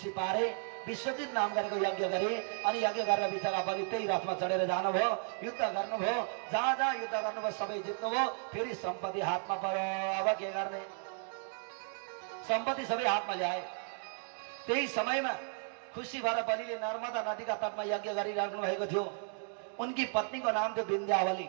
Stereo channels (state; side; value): silent; left; 55 dB below the other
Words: पारे, विश्वजित नाम गरेको यज्ञ गरे। अनि यज्ञ गरेर बिचरा बलि त्यही रथमा चढेर जानुभयो, युद्ध गर्नुभयो। जहाँ जहाँ युद्ध गर्नुभयो सबै जित्नुभयो। फेरि सम्पत्ति हातमा पर्यो। अब के गर्ने? सम्पत्ति सबै हातमा ल्याए। त्यही समयमा खुसी भएर बलिले नर्मदा नदीका तटमा यज्ञ गरिराख्नु भएको थियो। उनकी पत्नीको नाम थियो विन्ध्यावली।